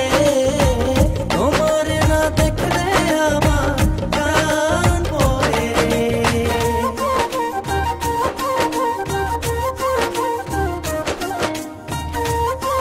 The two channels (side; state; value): both; identical; correlation 1.00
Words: তোমার না দেখলে আমার প্রাণ পড়ে।